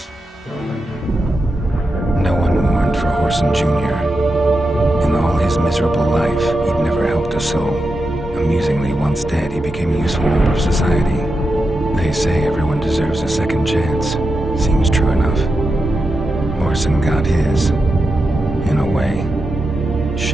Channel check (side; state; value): both; normal; correlation 0.88